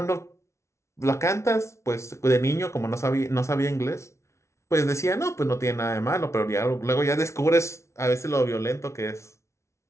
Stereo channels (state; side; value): late; right; 0.13 ms